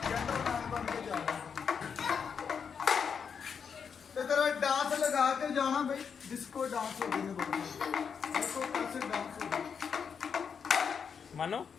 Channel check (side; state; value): right; quieter; 6.6 dB